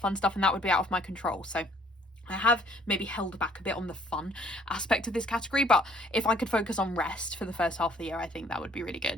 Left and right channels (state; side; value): normal; both; correlation 0.60